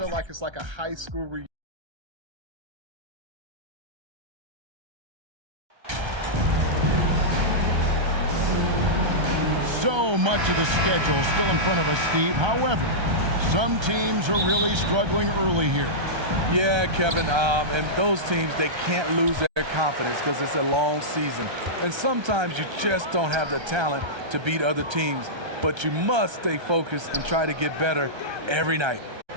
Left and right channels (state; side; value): late; left; 1.3 ms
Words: like it's like a high school reunion. So much of the schedule still in front of us, Steve. However, some teams are really struggling early here. Yeah, Kevin, and those teams, they can't lose their confidence because it's a long season. And sometimes you just don't have the talent to beat other teams, but you must stay focused and try to get better every night.